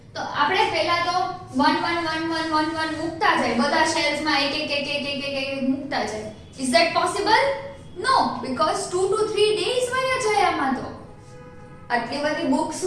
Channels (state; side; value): identical; both; correlation 1.00